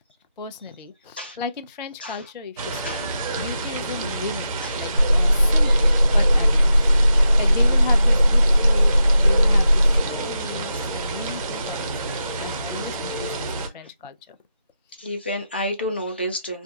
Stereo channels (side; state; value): both; inverted; correlation -0.89